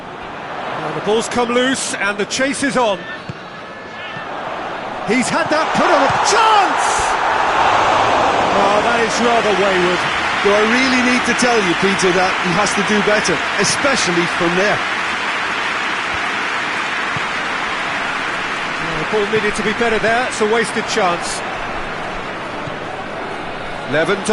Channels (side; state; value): both; identical; correlation 1.00